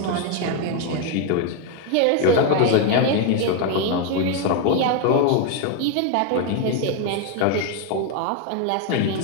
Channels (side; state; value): both; different; correlation 0.01